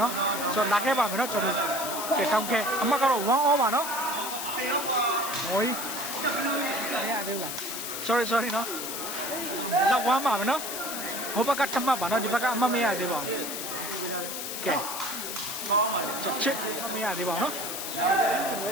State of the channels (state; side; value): noise; left; hiss, 5 dB below the sound